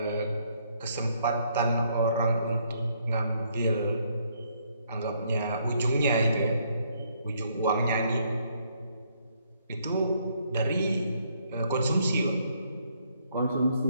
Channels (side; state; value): both; inverted; correlation -0.70